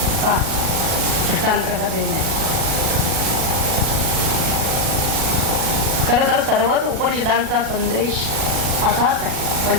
दृष्टांत कसा देणे. खरं तर सर्वच उपनिषदांचा संदेश असाच आहे,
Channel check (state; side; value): late; left; 37 ms